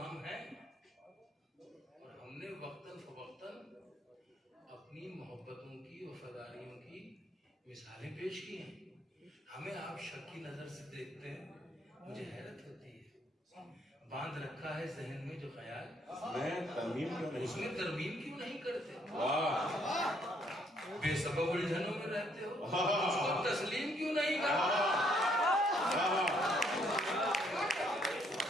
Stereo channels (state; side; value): normal; both; correlation 0.69